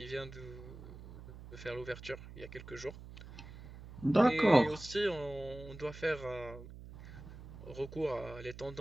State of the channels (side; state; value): right; noise; hum, 14 dB below the sound